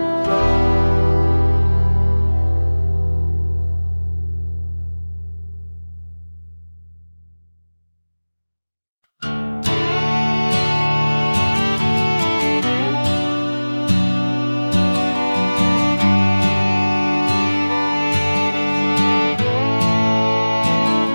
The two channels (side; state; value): both; inverted; correlation -1.00